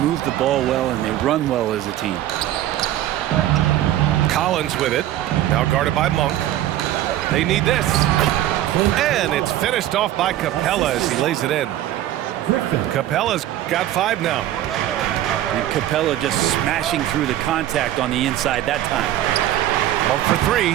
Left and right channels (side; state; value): left; quieter; 13.2 dB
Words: the ball well and they run well as a team. Collins with it. Now guarded by Monk. They need this. And it's finished off by Capella as he lays it in. Capella's got 5 now. And Capella just smashing through the contact on the inside that time. Monk for 3.